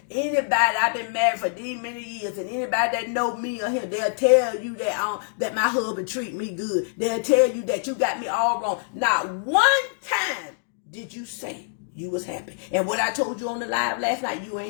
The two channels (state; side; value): silent; right; 62 dB below the other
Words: anybody, I've been married for these many years, and anybody that know me or him, they'll tell you that my husband treat me good. They'll tell you that you got me all wrong. Not one time did you say you was happy? And what I told you on the live last night, you